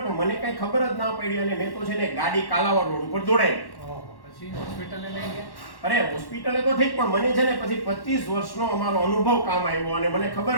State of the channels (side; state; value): right; late; 1.1 ms